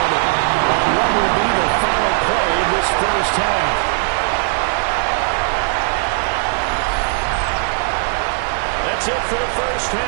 on what will be the final play in this first half. That's it for the first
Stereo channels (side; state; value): left; silent; 60 dB below the other